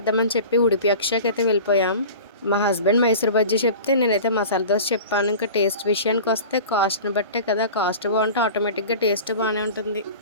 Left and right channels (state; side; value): inverted; both; correlation -0.37